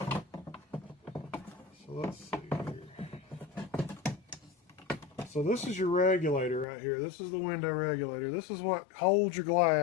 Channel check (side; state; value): right; drops out; at 6.7 s